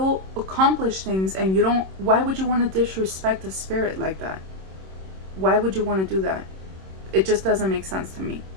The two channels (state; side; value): late; left; 26 ms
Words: accomplish things, and why would you want to disrespect a spirit like that? Why would you want to do that? It just doesn't make sense to me.